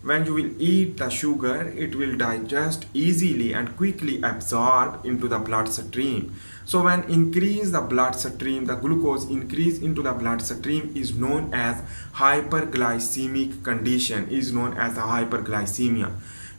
When you will eat the sugar, it will digest easily and quickly absorb into the bloodstream. So when increase the bloodstream, the glucose increase into the bloodstream is known as hyperglycemic condition, is known as the hyperglycemia.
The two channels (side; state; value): both; inverted; correlation -1.00